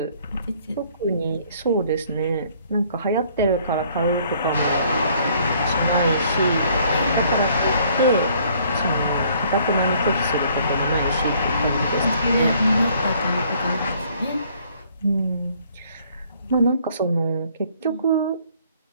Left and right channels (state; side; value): inverted; both; correlation -0.61